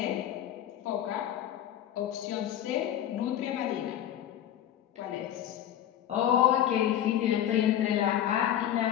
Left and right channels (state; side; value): quieter; right; 11.2 dB